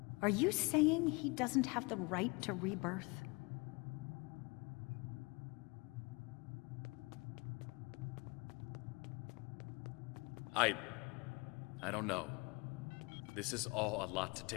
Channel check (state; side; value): quieter; right; 27.7 dB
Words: Are you saying he doesn't have the right to rebirth? I don't know. This is all a lot to